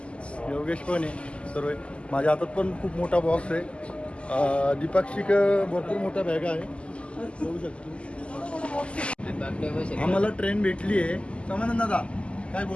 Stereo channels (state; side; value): late; right; 0.055 ms